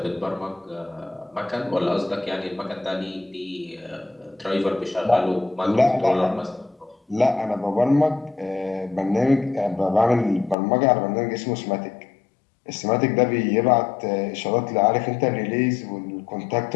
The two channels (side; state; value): right; drops out; at 10.6 s